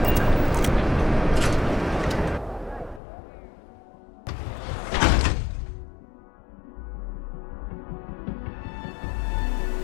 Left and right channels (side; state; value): right; drops out; at 3.0 s